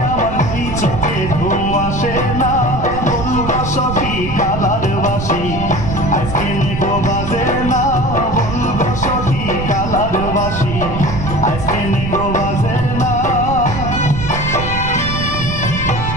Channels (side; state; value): right; noise; rumble, 6 dB below the sound